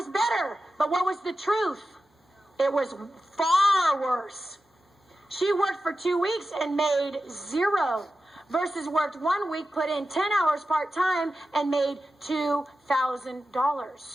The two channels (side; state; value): both; normal; correlation 0.92